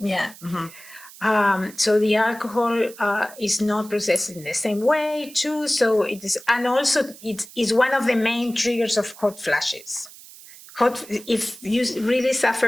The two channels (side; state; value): right; noise; hiss, 19 dB below the sound